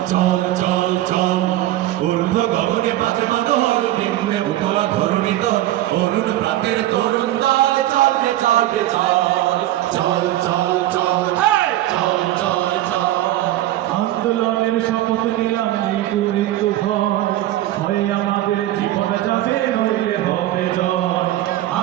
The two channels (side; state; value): left; quieter; 14.5 dB